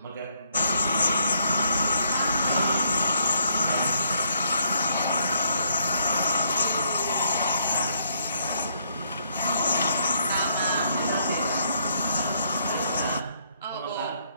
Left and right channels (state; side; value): inverted; both; correlation -0.71